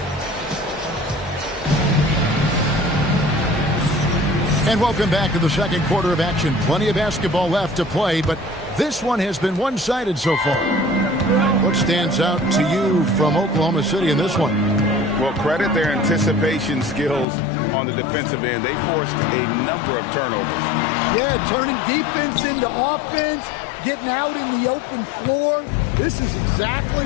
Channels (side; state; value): right; drops out; at 17.2 s